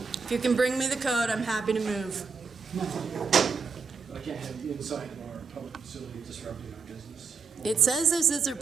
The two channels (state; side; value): quieter; left; 5.3 dB